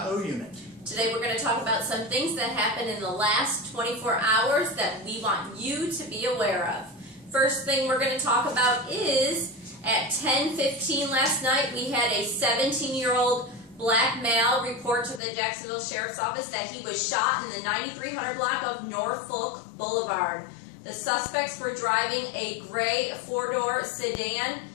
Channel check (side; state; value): right; drops out; at 15.2 s